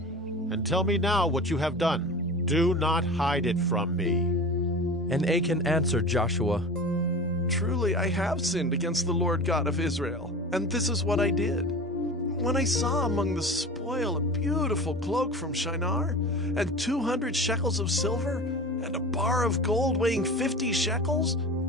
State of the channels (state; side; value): normal; both; correlation 0.34